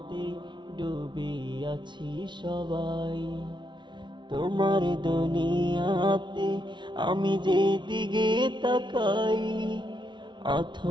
ডুবে আছি সবাই। তোমার দুনিয়াতে আমি যেদিকে তাকাই,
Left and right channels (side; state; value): left; late; 0.23 ms